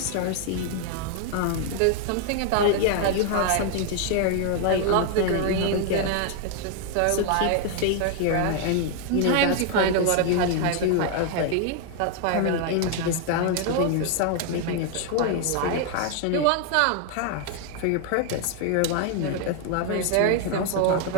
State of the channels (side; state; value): both; different; correlation 0.00